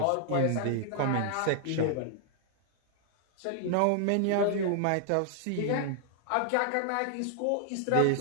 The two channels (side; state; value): both; different; correlation 0.00